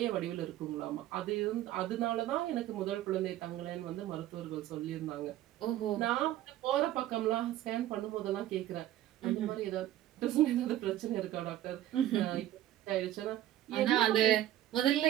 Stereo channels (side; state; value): left; quieter; 13.4 dB